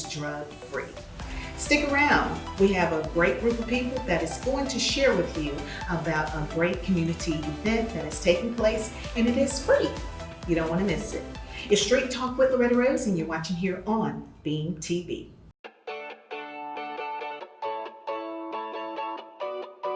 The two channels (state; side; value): identical; both; correlation 1.00